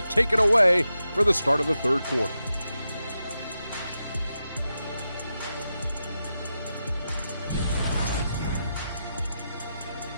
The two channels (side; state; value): both; inverted; correlation -0.88